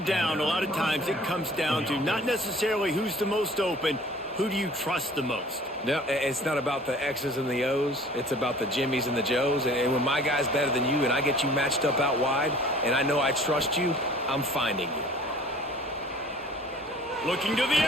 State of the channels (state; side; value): normal; both; correlation 0.49